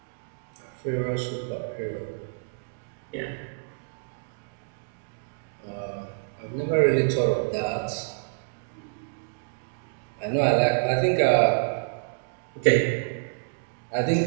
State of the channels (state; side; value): silent; left; digital silence